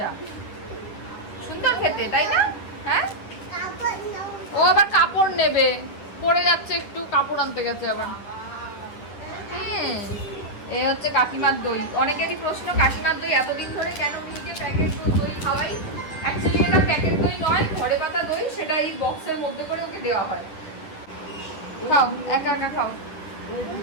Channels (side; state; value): right; late; 9.9 ms